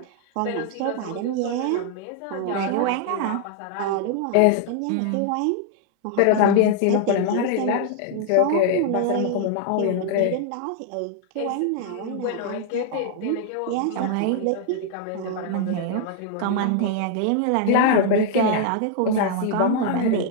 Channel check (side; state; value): both; different; correlation 0.00